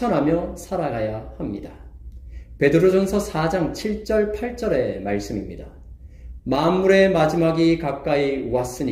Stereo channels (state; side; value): identical; both; correlation 1.00